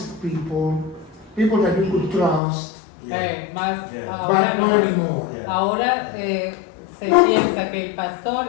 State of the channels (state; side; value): drops out; right; at 2.4 s